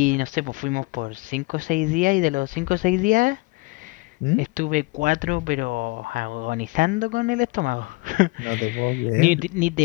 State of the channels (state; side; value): quieter; right; 24.5 dB